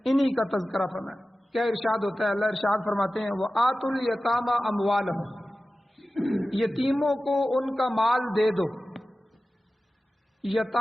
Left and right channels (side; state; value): both; normal; correlation 0.95